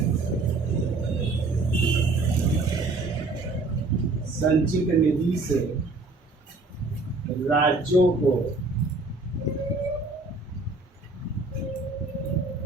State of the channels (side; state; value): left; quieter; 3.4 dB